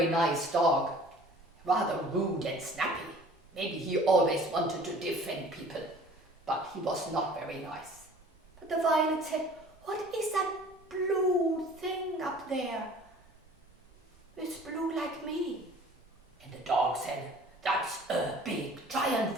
nice dog, rather rude and snappy. Maybe he always wanted to defend people, but he was not very nice. But the violet said, "What is that blue thing up there? It's blue like me." And the dog said, "That's a big giant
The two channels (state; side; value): normal; both; correlation 0.49